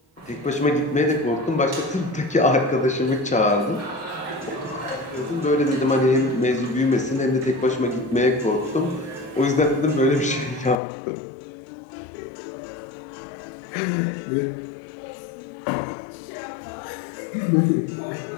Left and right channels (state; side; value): drops out; right; at 10.8 s